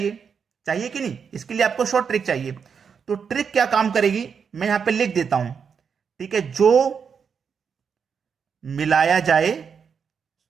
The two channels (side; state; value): left; quieter; 6.5 dB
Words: चाहिए कि नहीं? इसके लिए आपको शॉर्ट ट्रिक चाहिए। तो ट्रिक क्या काम करेगी, मैं यहां पे लिख देता हूं। ठीक है, जो मिलाया जाए,